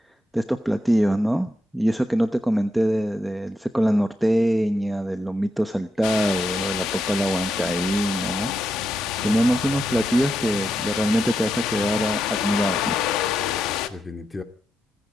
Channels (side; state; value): both; normal; correlation 0.84